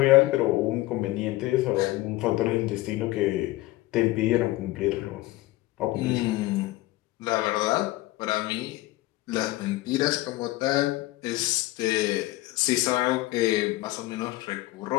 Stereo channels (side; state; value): right; quieter; 18.5 dB